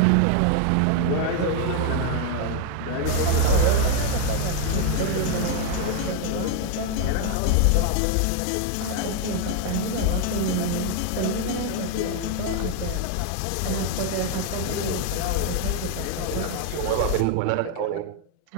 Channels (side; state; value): both; different; correlation 0.00